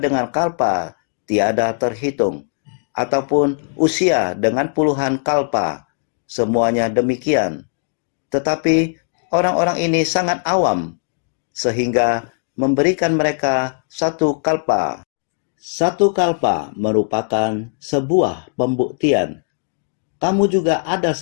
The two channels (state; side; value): silent; right; 61 dB below the other